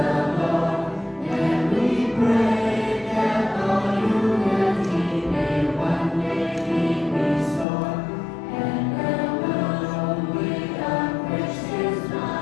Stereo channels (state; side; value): drops out; right; at 7.7 s